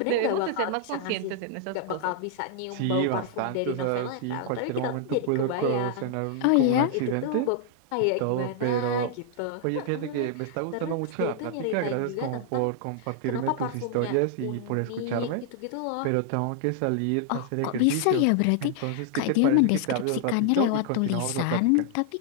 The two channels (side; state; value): both; different; correlation 0.00